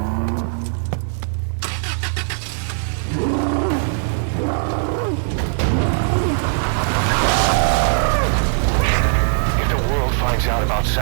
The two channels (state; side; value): silent; left; 66 dB below the other